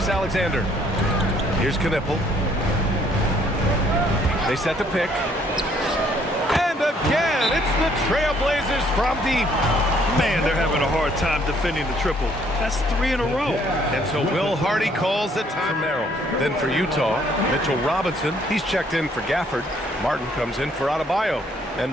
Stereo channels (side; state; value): both; normal; correlation 0.64